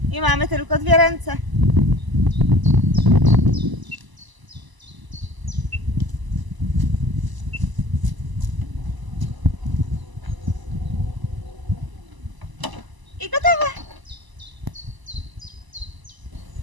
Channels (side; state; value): left; late; 1.0 ms